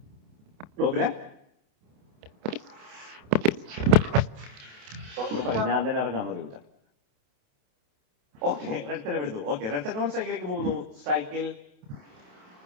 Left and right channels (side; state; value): left; late; 28 ms